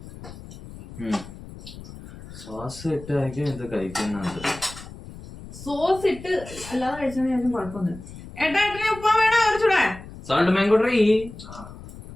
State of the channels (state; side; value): noise; left; rumble, 15 dB below the sound